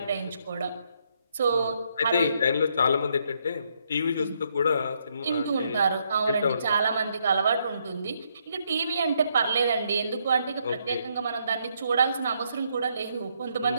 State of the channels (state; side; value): inverted; both; correlation -0.74